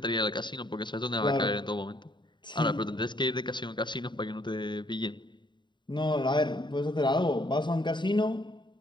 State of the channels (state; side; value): late; right; 0.22 ms